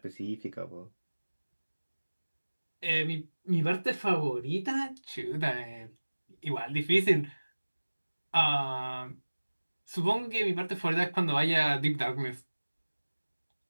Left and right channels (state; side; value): inverted; both; correlation -1.00